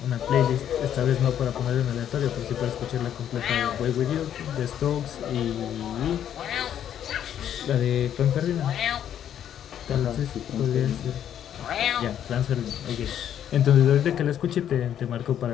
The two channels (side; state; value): right; quieter; 10.0 dB